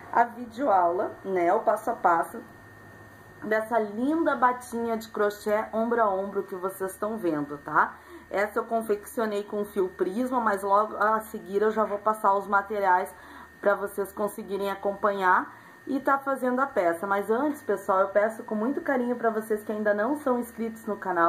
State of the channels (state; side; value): identical; both; correlation 1.00